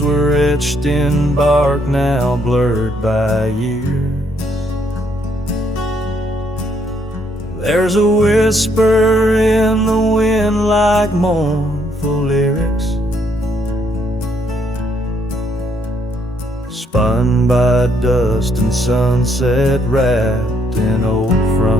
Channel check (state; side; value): normal; both; correlation 0.71